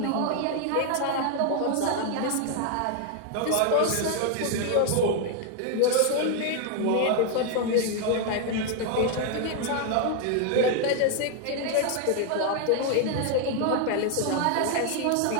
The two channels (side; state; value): both; different; correlation 0.00